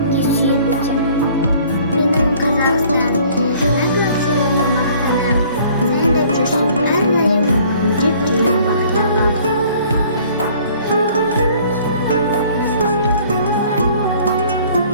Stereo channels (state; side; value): inverted; both; correlation -0.55